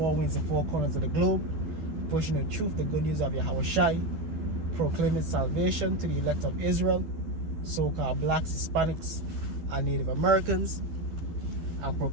winds and four corners of the globe, pushing the truth, the good news of Yahweh Shai, proclaiming salvation to the elect of Israel, so-called blacks, Hispanics, and Native Americans, and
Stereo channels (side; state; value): left; late; 12 ms